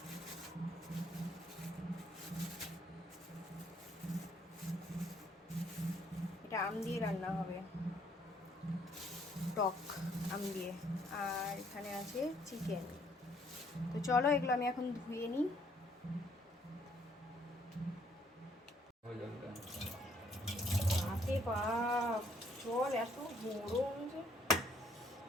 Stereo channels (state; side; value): normal; both; correlation 0.66